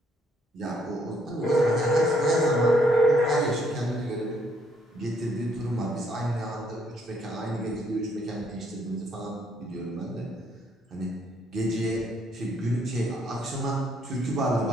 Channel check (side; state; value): both; normal; correlation 0.69